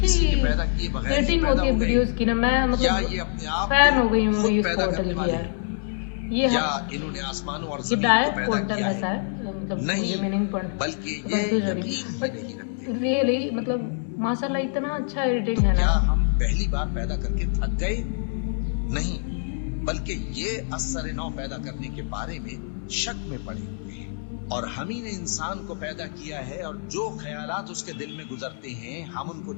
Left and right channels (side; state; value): right; silent; 59 dB below the other